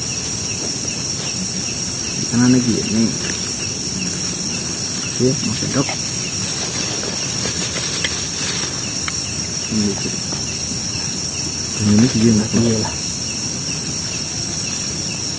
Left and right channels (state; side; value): identical; both; correlation 1.00